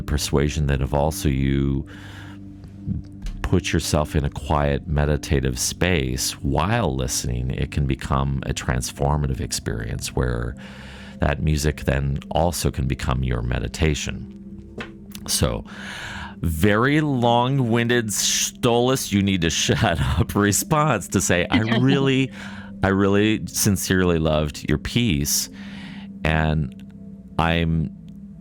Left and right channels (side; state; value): both; identical; correlation 1.00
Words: persuasion that if also you put yourself in a quiet meditative space while listening, it can become a transformative experience where that music then also can become your meditation. So, very long-winded Stolace, you need to shut up response to say, I really sincerely loved your piece, and I'm